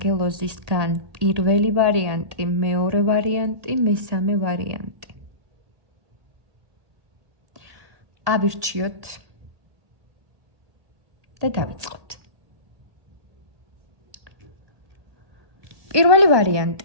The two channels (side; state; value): left; late; 1.2 ms